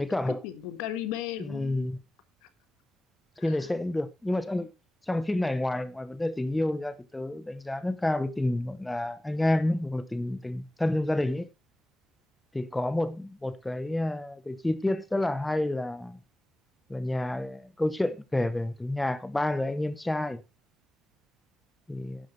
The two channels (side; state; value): both; normal; correlation 0.97